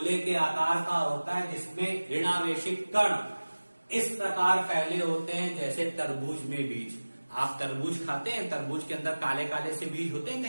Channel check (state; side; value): inverted; both; correlation -1.00